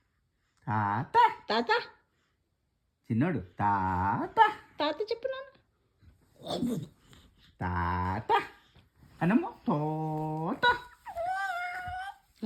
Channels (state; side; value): identical; both; correlation 1.00